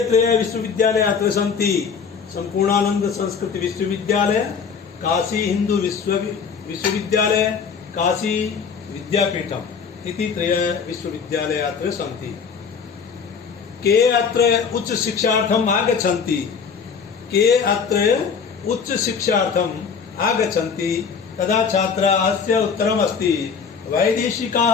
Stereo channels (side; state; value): right; quieter; 6.1 dB